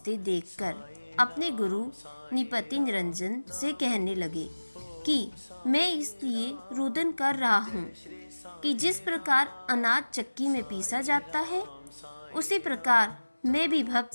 देखकर अपने गुरु निपति निरंजन से कहने लगे कि मैं इसलिए रुदन कर रहा हूँ कि जिस प्रकार अनाज चक्की में पीसा जाता है उसी प्रकार मैं भी भक्त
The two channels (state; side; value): inverted; both; correlation -1.00